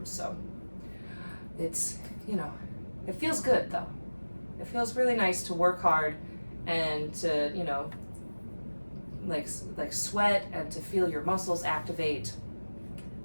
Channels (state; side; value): inverted; both; correlation -1.00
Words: so it's, it feels good, though. It feels really nice to work hard and to, like sweat and to feel your muscles activate.